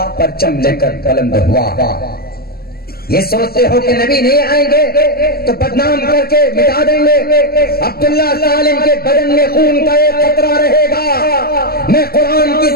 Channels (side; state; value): right; late; 0.45 ms